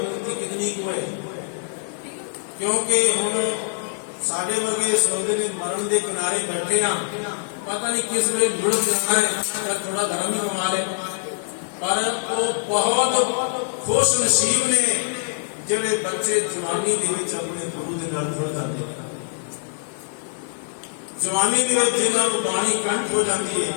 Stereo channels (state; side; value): silent; right; digital silence